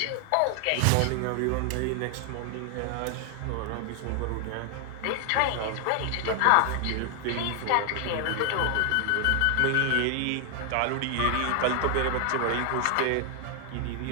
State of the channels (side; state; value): both; different; correlation 0.00